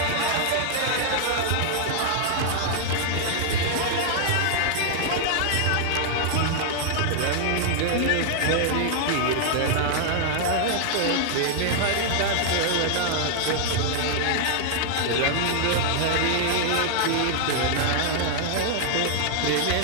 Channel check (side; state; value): both; different; correlation -0.01